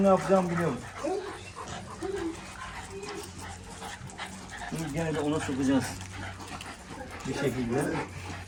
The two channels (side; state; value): both; identical; correlation 1.00